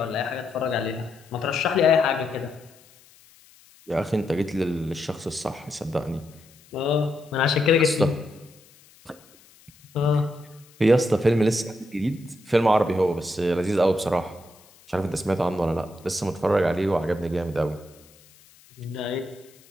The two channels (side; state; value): left; noise; hiss, 27 dB below the sound